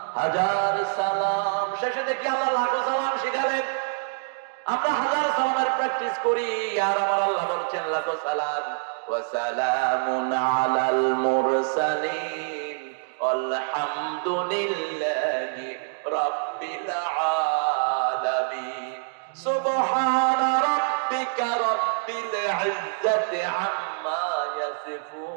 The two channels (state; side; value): silent; left; digital silence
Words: হাজার সালাম, শেষে দেখি আল্লাহ লাখো সালাম শিখালেন। আমরা হাজার সালামের প্র্যাকটিস করি, আর আমার আল্লাহ বলছেন লাখো সালাম। ওয়া সালামুন আলাল মুরসালিন আলহামদুলিল্লাহি রাব্বিল আলামিন। সুবহানা রাব্বিকা রাব্বিল ইজ্জাতি আম্মা